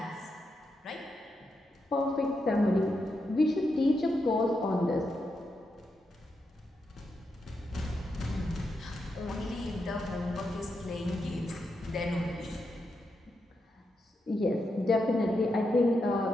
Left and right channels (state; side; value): normal; both; correlation 0.85